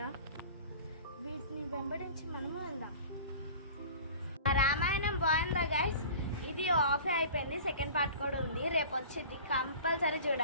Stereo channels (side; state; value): both; inverted; correlation -0.41